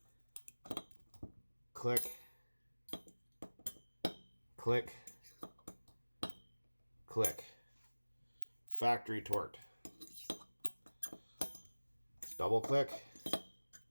click, click, click. Factory torque. Double click,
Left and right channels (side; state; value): both; inverted; correlation -1.00